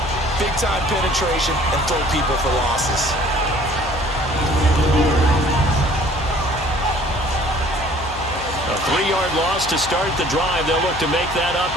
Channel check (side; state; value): left; noise; hum, 12 dB below the sound